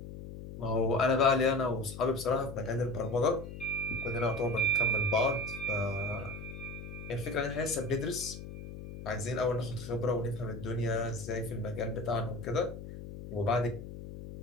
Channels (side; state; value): left; noise; hum, 11 dB below the sound